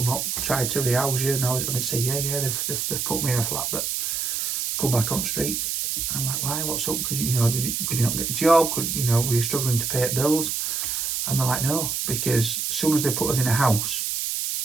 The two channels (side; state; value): right; noise; hiss, 1 dB below the sound